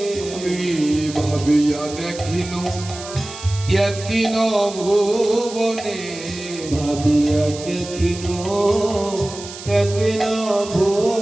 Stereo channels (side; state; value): right; noise; hiss, 13 dB below the sound